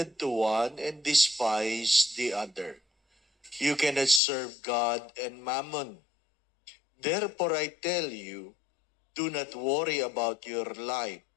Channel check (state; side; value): drops out; right; at 4.2 s